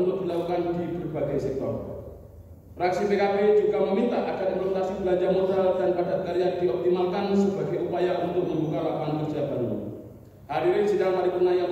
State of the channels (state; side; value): identical; both; correlation 1.00